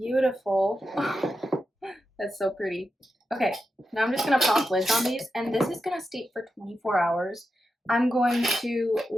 That's so pretty. Okay, now I'm just going to pop lids on these, and this is going to steep for 24 hours. I'm going to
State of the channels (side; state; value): both; normal; correlation 0.89